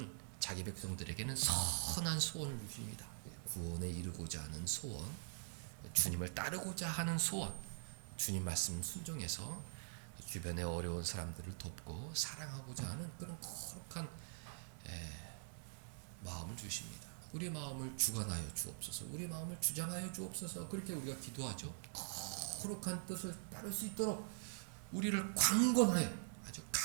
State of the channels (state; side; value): silent; left; digital silence